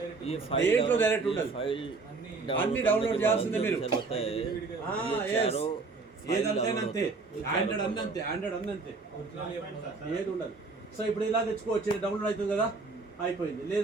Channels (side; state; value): left; quieter; 4.1 dB